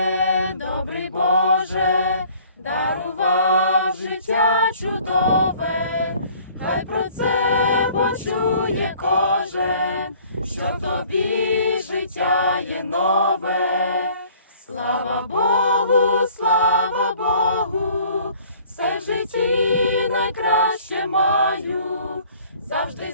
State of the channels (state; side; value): inverted; both; correlation -0.54